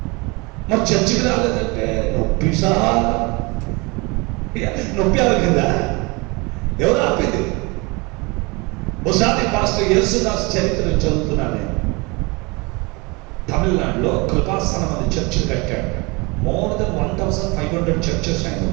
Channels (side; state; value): left; quieter; 26.9 dB